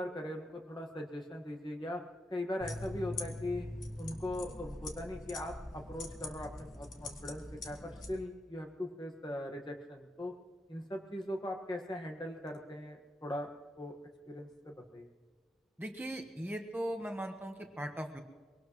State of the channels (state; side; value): normal; both; correlation 0.83